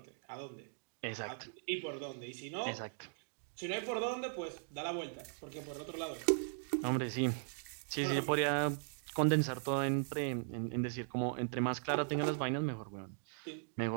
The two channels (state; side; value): silent; left; digital silence